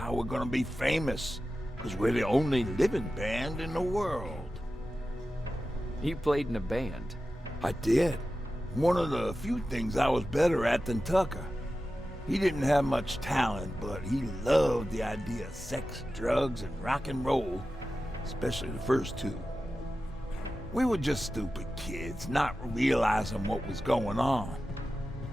we're gonna be famous, because we're the only living band in the world. You played in a band. I did. One of the few things I was better at than Tucker. He didn't have much talent, but he loved the idea of sex, drugs, and rock and roll, especially the first two. We were just stupid kids, not realizing what was going on.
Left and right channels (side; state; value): both; normal; correlation 0.93